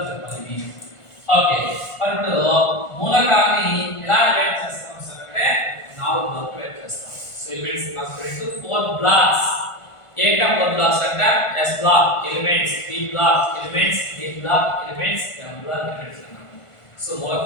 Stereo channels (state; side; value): late; right; 1.5 ms